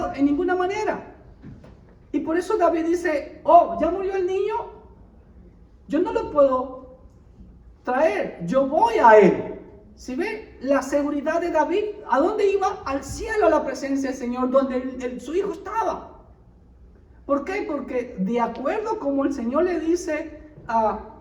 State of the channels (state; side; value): identical; both; correlation 1.00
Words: en ninguna manera. Y por eso David dice, ya murió el niño, yo no lo puedo traer, yo voy a él. ¿Sí ve? La seguridad de David, ¿a dónde iba? Al cielo, a la presencia del Señor, donde su hijo estaba. ¿Por qué? Porque de acuerdo como el Señor le dice